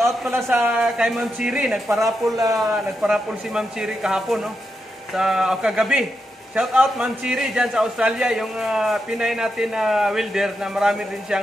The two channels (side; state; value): both; normal; correlation 0.85